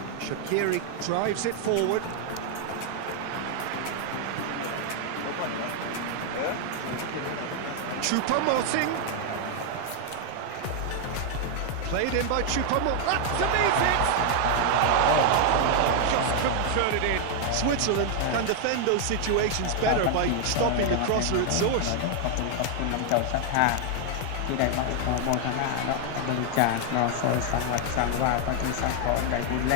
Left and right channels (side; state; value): both; different; correlation 0.00